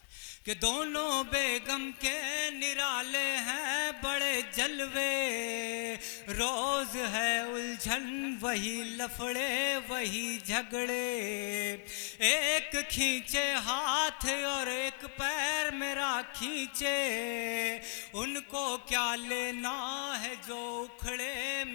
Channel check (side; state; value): right; silent; 54 dB below the other